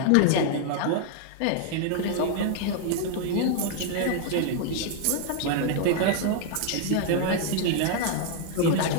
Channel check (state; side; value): different; both; correlation 0.00